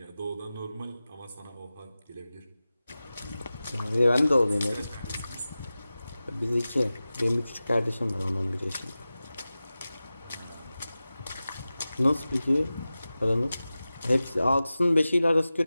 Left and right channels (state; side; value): inverted; both; correlation -0.96